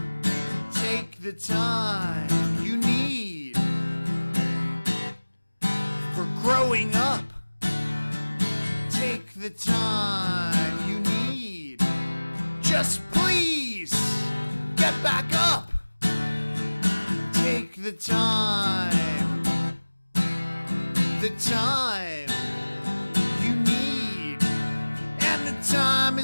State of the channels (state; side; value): inverted; both; correlation -1.00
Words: Take the time you need for growing up. Take the time you need. Just please get back up. Take the time you need. And the time